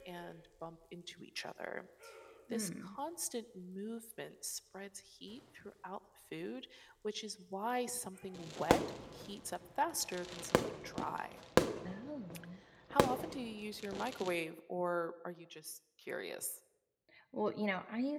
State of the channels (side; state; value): both; identical; correlation 1.00